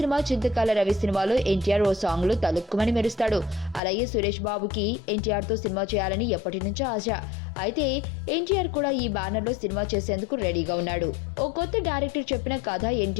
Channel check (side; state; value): right; drops out; at 3.8 s